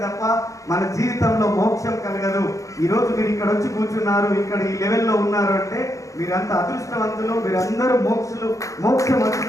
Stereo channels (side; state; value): right; late; 0.16 ms